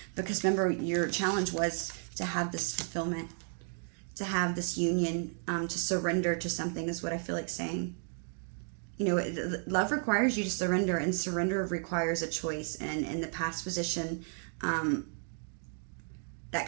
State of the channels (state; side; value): silent; left; 56 dB below the other